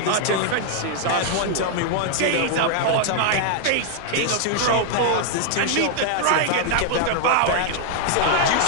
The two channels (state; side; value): different; both; correlation 0.00